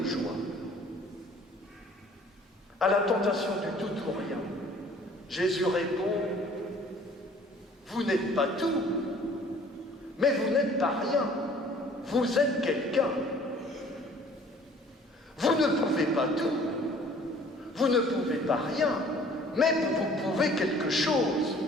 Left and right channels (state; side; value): normal; both; correlation 0.53